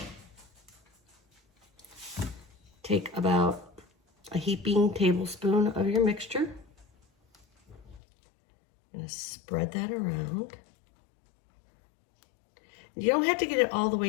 Take about a heaping tablespoon of your mixture. I'm going to spread that around. You don't have to get it all the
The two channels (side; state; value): right; drops out; at 8.0 s